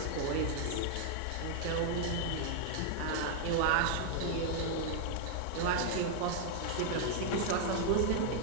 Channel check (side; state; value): both; different; correlation 0.00